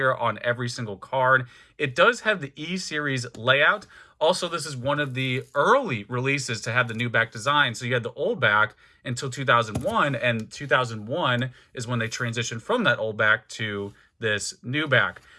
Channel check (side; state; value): both; identical; correlation 1.00